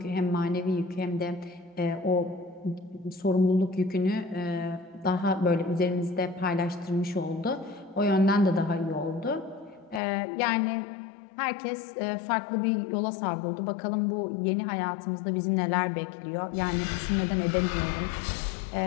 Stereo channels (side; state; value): right; drops out; at 10.0 s